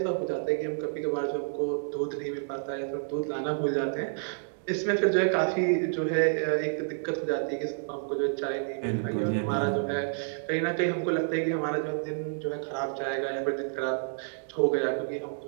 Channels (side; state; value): left; silent; digital silence